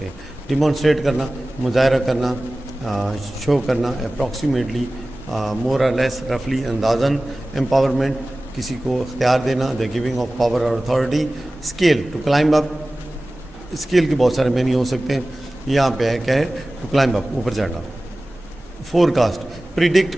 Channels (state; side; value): normal; both; correlation 0.97